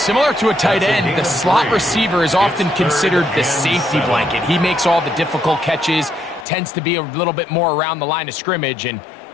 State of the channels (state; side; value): drops out; right; at 6.5 s